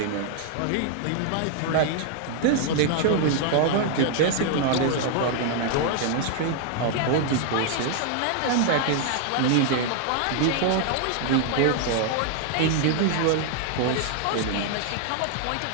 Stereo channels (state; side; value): different; both; correlation 0.00